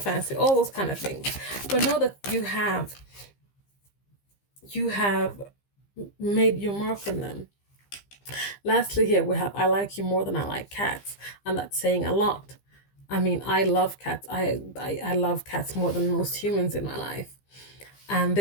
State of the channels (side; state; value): right; late; 15 ms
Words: All those kind of things. But know that you have made your mark on them. Lastly, here we have, I like you more than I like cats. And that's saying a lot. I mean, I love cats. I love cats more than most humans in my life. And